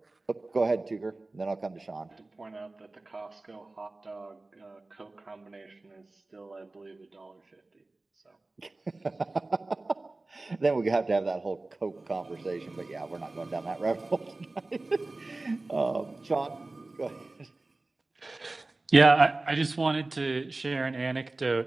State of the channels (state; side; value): quieter; left; 3.1 dB